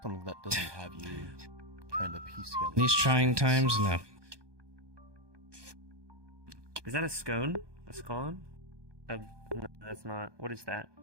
Something that doesn't have you trying to piece together. These trying times, no. Is that a scone? A scone? No, that's not. What is that?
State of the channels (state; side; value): late; left; 1.2 ms